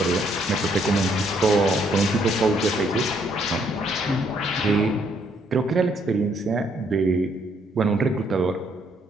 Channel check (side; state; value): both; normal; correlation 0.70